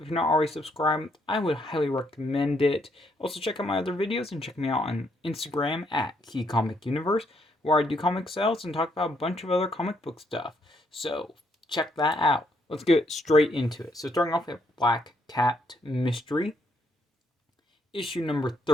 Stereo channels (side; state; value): both; normal; correlation 0.73